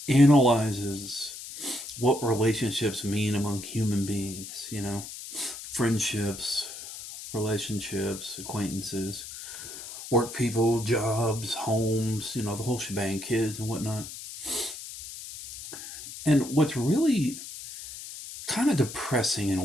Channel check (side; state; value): left; noise; hiss, 11 dB below the sound